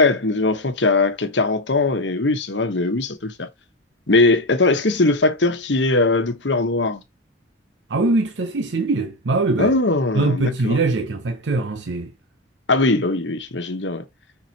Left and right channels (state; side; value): normal; both; correlation 0.13